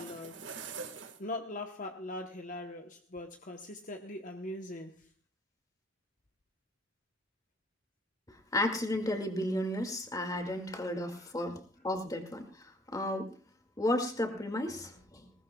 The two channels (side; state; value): both; normal; correlation 0.55